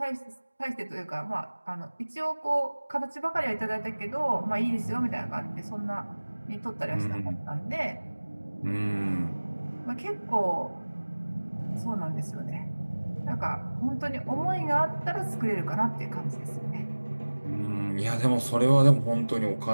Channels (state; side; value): inverted; both; correlation -1.00